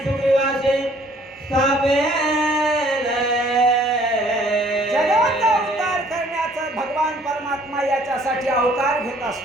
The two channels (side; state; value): both; normal; correlation 0.59